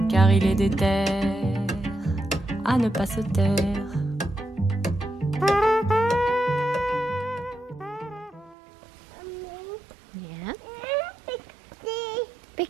Car il est déter à ne pas se taire. Yeah. Big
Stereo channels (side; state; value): left; drops out; at 8.6 s